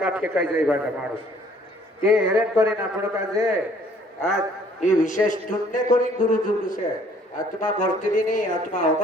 फेंकाई जाए बना मानुष ते हेरेन करेन आपण काजे आज ये विशेष ढूंढने करी गुरु जुलू से आत्मा मरती नहीं आत्मा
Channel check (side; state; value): both; normal; correlation 0.59